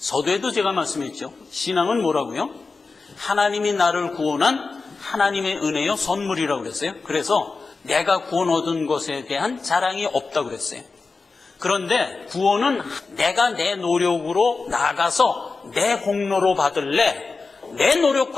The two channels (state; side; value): quieter; right; 4.2 dB